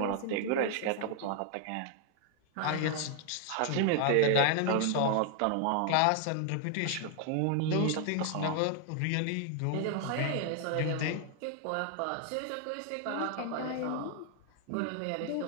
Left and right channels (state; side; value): different; both; correlation 0.00